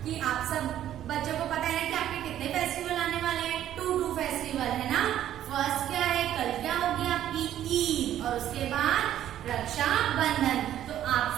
कि आप सब बच्चों को पता है ना कि आपके कितने फेस्टिवल आने वाले हैं। 2 फेस्टिवल है ना। फर्स्ट क्या है, कल क्या होगी आपकी ईद, और उसके बाद रक्षा बंधन। तो आप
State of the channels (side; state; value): left; quieter; 11.6 dB